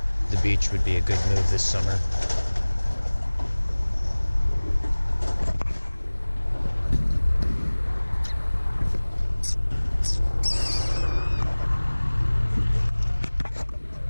the beach would be a good move this summer.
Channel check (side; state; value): both; inverted; correlation -1.00